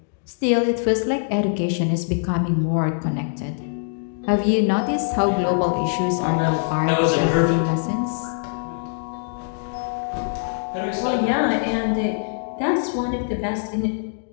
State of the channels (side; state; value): right; silent; digital silence